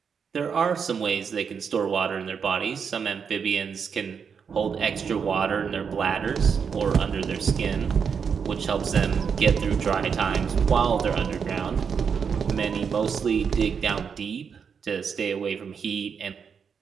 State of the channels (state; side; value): quieter; left; 6.5 dB